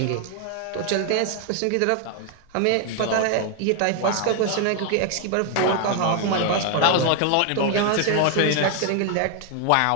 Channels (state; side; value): different; both; correlation 0.00